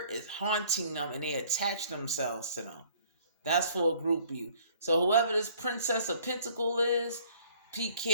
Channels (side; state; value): both; inverted; correlation -0.57